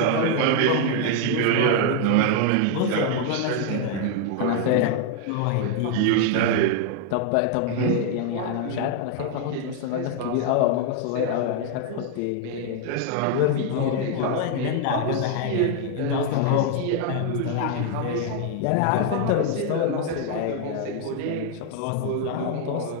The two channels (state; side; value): different; both; correlation 0.00